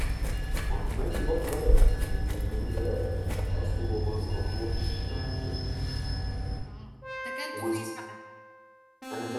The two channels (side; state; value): both; identical; correlation 1.00